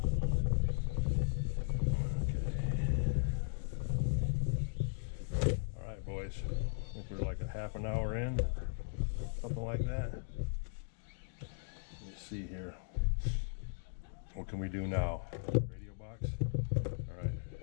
boys, I think we're like a half an hour in, something like that. Let's see here. What can we do now? Radio box? Alright,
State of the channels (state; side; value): silent; right; digital silence